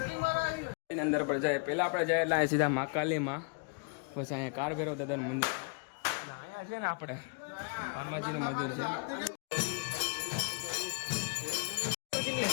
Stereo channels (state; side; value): quieter; right; 37.6 dB